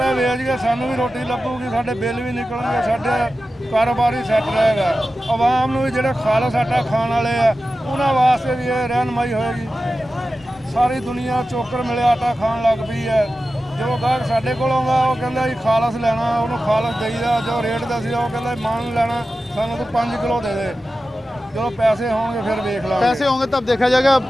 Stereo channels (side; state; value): both; normal; correlation 0.94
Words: ਵੇਚ ਕੇ ਸਾਨੂੰ ਵੀ ਰੋਟੀ ਲੱਗੂਗੀ, ਸਾਡੇ ਬਿੱਲ ਵੀ ਨਿਕਲਣਗੇ, ਸਾਡੇ ਕਾਰੋਬਾਰ ਹੀ ਸੈੱਟ ਰਹੇਗਾ। ਆਵਾਮ ਨੂੰ ਵੀ ਜਿਹੜੇ ਖਾਲਸ ਆਟਾ ਖਾਣ ਵਾਲੇ ਆ ਉਹਨਾਂ ਵਾਸਤੇ ਵੀ ਇਹ ਰਹਿਨਮਾਈ ਹੋਏਗੀ। ਸਾਰੀ ਦੁਨੀਆ ਚੋਕਰ ਮਿਲਿਆ ਆਟਾ ਖਾਣ ਲੱਗ ਪਈ ਹੈ। ਜੋ ਗਾਹਕ ਸਾਡੇ ਕੋਲ ਆਉਂਦਾ ਉਹ ਕਹਿੰਦਾ ਜੀ ਖਾਲਸ ਲੈਣਾ, ਉਹਨੂੰ ਖਾਲਸ ਦੇਈਦਾ। ਜੋ ਰੇਟ ਦੱਸਿਆ ਉਹ ਕਹਿੰਦਾ ਮਾਨ ਲੈਣਾ ਸਾਨੂੰ ਤੂੰ 5 ਕਿਲੋ ਦੇ ਦੇ। जो पैसे होंगे फिर देख लो, पैसे होंगे तब देखा जाएगा।